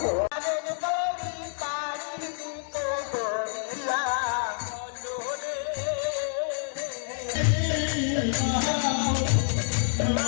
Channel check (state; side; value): silent; right; digital silence